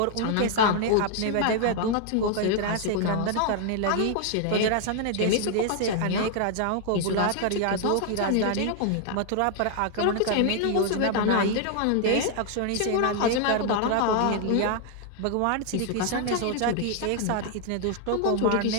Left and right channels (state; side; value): different; both; correlation 0.00